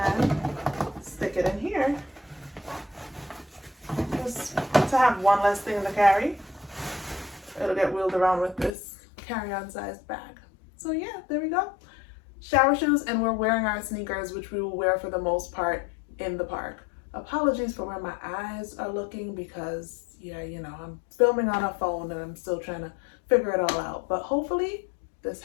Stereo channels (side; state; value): right; drops out; at 8.7 s